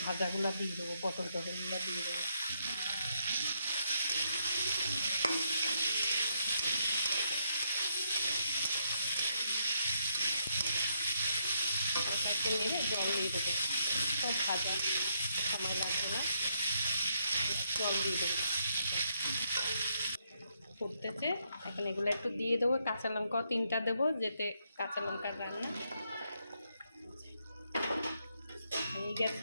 ভাজাগুলো দিয়ে দেবো, পটল টটলগুলো দিয়ে দেবো। নিয়ে জল দিয়ে দেবো, সব ভাজা সময় লাগবে না, জল দিয়ে দেবো। ফুটতেছে, এখন এগুলো একটু দিয়ে দেবো। কাঁচা লঙ্কাও 3টা দেবো, যেতে কাঁচা লঙ্কার রান্না হয়ে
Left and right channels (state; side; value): inverted; both; correlation -0.76